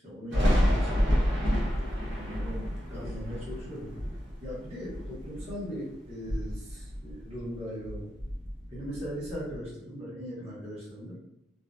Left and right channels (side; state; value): both; normal; correlation 0.89